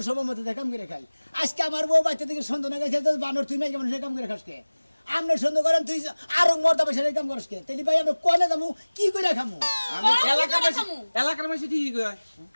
সময় মতো যায় কাম করে খাই আজকে আমার বউ বাচ্চা থেকে সন্ধ্যা না গেছে বানর তুই নাই কেমন সে কাম করে খাস কে আপনি সন্ধ্যা করেন তুই আরো মর্দা পয়সা কাম করিস কে তাহলে ভাই আমরা কনে যাবো কি করে খামু আমি কি এলাকার করে মাসি খামু? এলাকার মাসি ঠিকই কয়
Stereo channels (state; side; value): inverted; both; correlation -1.00